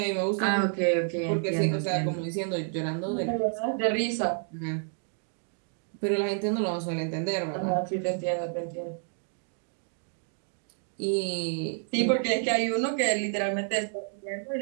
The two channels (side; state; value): left; silent; 58 dB below the other